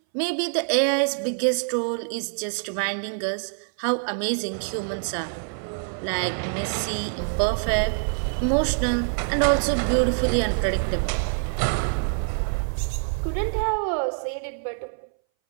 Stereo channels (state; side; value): silent; left; 61 dB below the other